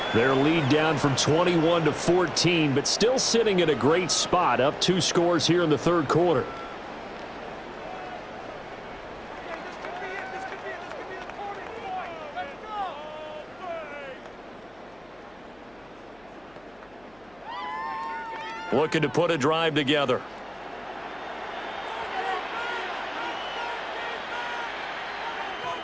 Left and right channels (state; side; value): noise; left; hum, 29 dB below the sound